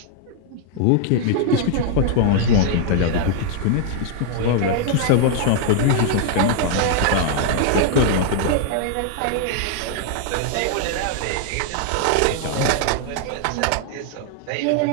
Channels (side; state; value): both; different; correlation 0.00